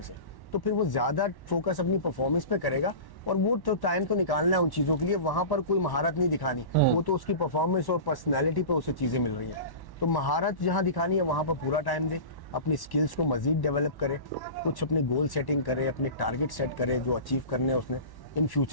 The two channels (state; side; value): late; right; 1.1 ms